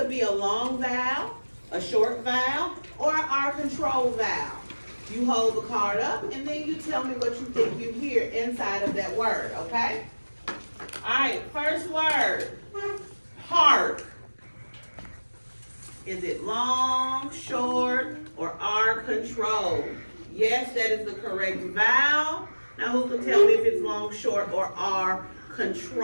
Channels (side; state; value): both; inverted; correlation -1.00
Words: be a long vowel, a short vowel, or our control vowel. You hold the card up and then you tell me what you think you hear inside of that word, okay? All right, first word, hark. Is it long, short, or R control? Yes, that is the correct vowel. Now who can tell me if it's long, short, or R